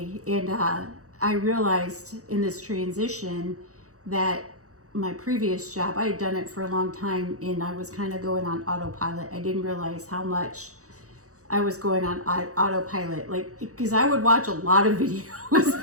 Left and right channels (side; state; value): left; late; 0.65 ms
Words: and I realized in this transition that my previous job, I had done it for a long time, and I was kind of going on autopilot. I didn't realize how much I was going on autopilot, because I would watch a lot of